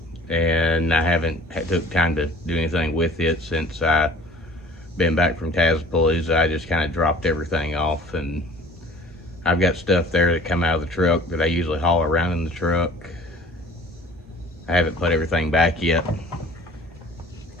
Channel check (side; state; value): both; normal; correlation 0.50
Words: and I haven't took time to do anything with it since I been back from Tazpalooza, I just kind of dropped everything off, and I've got stuff there that come out of the truck that I usually haul around in the truck. I haven't put everything back yet,